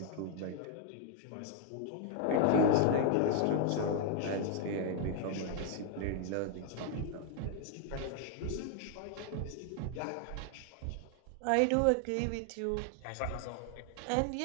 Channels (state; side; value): different; both; correlation 0.00